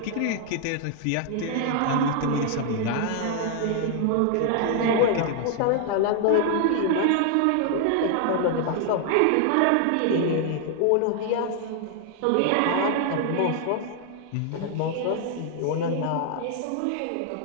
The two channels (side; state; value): both; different; correlation 0.00